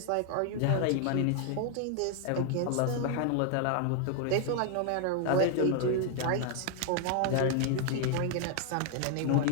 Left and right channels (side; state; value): both; different; correlation 0.00